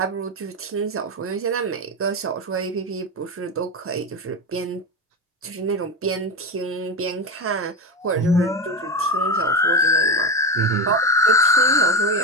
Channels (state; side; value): normal; both; correlation 0.16